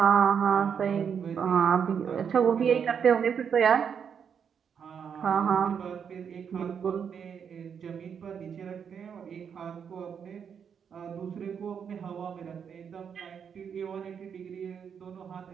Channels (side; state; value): left; quieter; 7.3 dB